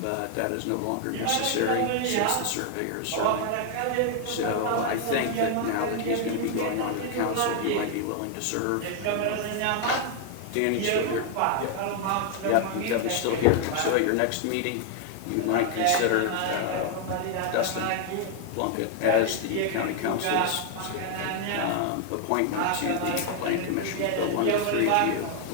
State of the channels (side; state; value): both; different; correlation 0.00